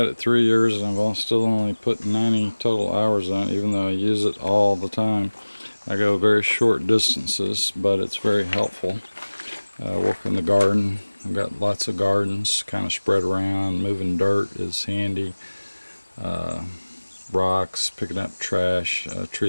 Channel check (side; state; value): both; inverted; correlation -1.00